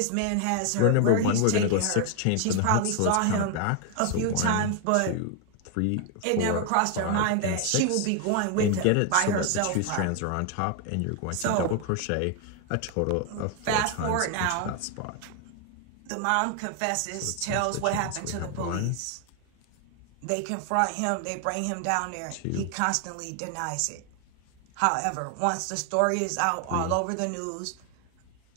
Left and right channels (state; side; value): different; both; correlation 0.01